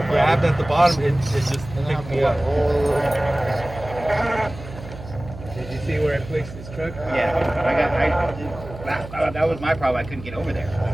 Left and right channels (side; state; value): right; noise; hum, 14 dB below the sound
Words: grabbed at the bottom, it just picked me up. Did you see where I placed this truck? Yeah, that was my problem. I couldn't get over there.